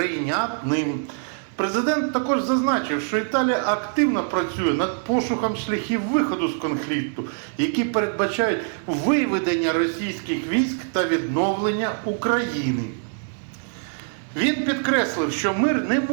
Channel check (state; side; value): silent; left; 63 dB below the other